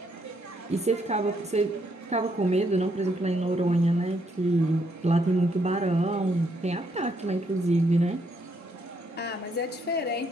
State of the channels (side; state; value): both; normal; correlation 0.74